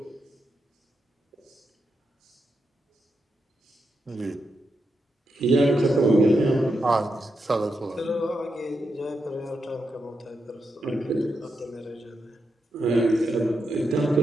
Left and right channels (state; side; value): normal; both; correlation 0.85